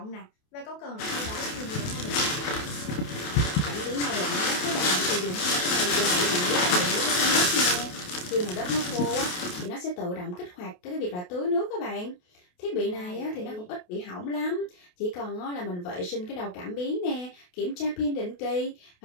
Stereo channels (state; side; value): late; right; 28 ms